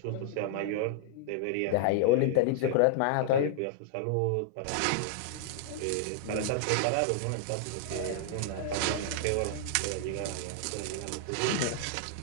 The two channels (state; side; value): different; both; correlation -0.01